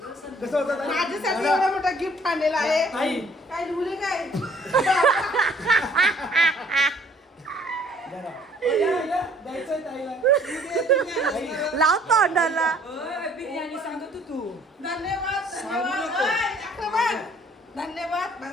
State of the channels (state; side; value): normal; both; correlation 0.59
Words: माझ्यासाठी एवढा मोठा गिफ्ट आणलेला आहे. काय लिहले काय लाव तोंडाला. बिर्याणी सांगत तू. धन्यवाद धन्यवाद धन्यवाद